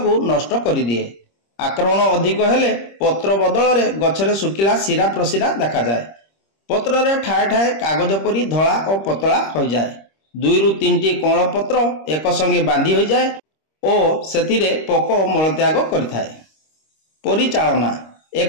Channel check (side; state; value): right; late; 26 ms